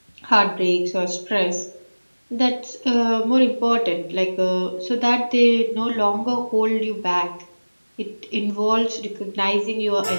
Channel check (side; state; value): both; inverted; correlation -1.00